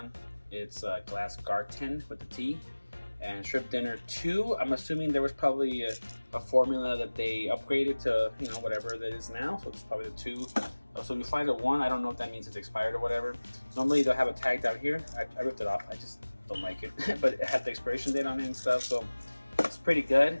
it's Glass Garten with the T. And Shrimp Dinner 2, I'm assuming there was probably a formula that they upgraded to, whatever that is now. So it's probably the 2. So if you find a 1, I don't know if that means it's expired or whatever. Normally they'll have a tag down here. I ripped it off. I just don't like it. But it had the expiration date on it and stuff. So it's pretty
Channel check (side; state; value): both; inverted; correlation -1.00